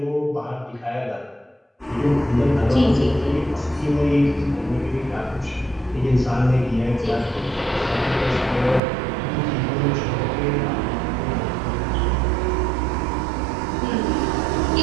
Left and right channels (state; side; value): drops out; left; at 8.8 s